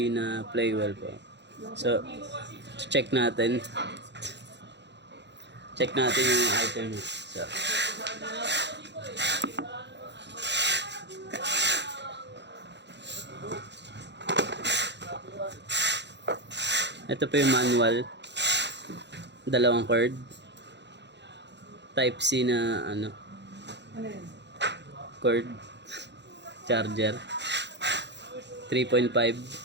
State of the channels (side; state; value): left; late; 0.51 ms